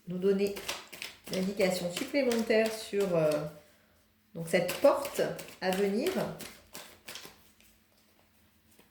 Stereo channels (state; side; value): identical; both; correlation 1.00